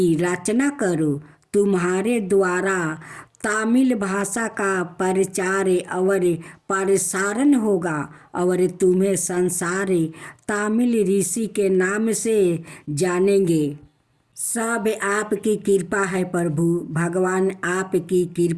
रचना करो। तुम्हारे द्वारा तामिल भाषा का प्रचार और प्रसारण होगा और तुम्हें संसार तामिल ऋषि के नाम से जानेंगे। सब आपकी कृपा है प्रभु। भगवान आपकी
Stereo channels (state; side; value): identical; both; correlation 1.00